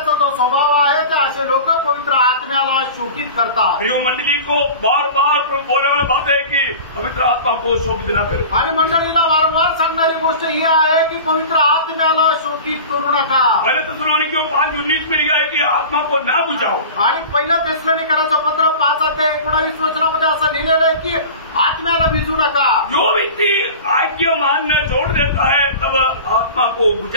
जो स्वभाव आहे ते असे लोक पवित्र आत्म्याला शोषित करतात। प्रिय मंडली को बार बार बोलने वाला बात है कि पवित्र आत्मा को शोभित न करो। आणि मंडळीला वारंवार सांगणारी गोष्ट ही आहे की पवित्र आत्म्याला शोषित करू नका। पहले तेसलोनिकियों 5:19 में लिखा है कि आत्मा को ना बुझाओ। आणि पहिलं तेसलोनिकराचं पत्र 5:19 असं लिहिलेलं आहे की आत्म्याला विझू नका। जो व्यक्ति आज्ञा मानना छोड़ देता है तब आत्मा को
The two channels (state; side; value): inverted; both; correlation -0.37